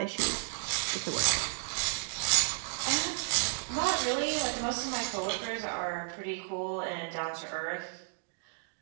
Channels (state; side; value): silent; left; digital silence